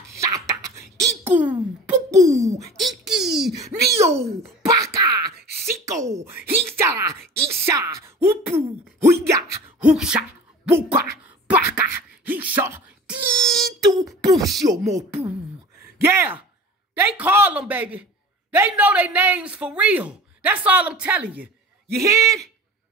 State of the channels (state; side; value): normal; both; correlation 0.40